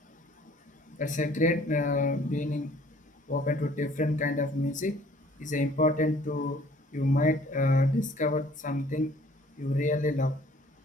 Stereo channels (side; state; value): both; normal; correlation 0.56